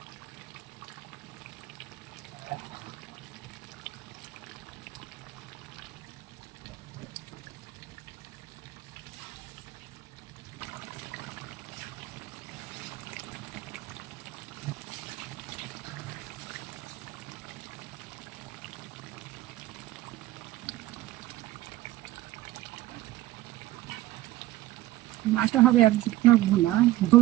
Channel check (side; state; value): left; quieter; 16.2 dB